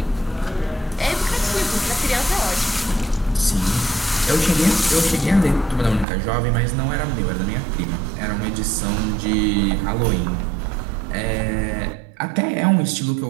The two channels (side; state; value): left; drops out; at 6.1 s